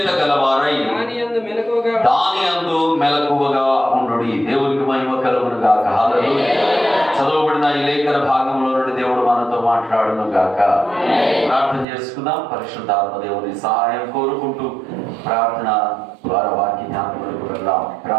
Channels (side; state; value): left; drops out; at 11.9 s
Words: దాని యందు మెలకువగా ఉండుడి. దేవునికి మహిమ కలుగును గాక. హల్లెలూయా. చదవబడిన ఈ లేఖన భాగంలో నుండి దేవుడు మనతో మాట్లాడును గాక. ప్రార్థన చేసుకుందాం. పరిశుద్ధాత్మ దేవుని సహాయం కోరుకుంటూ ప్రార్థన ద్వారా వాక్య జ్ఞాపకులకు వెళ్దాం.